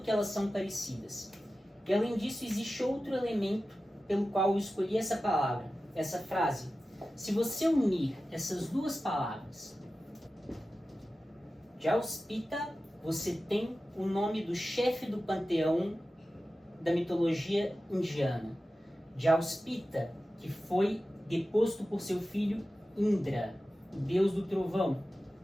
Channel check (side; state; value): both; normal; correlation 0.94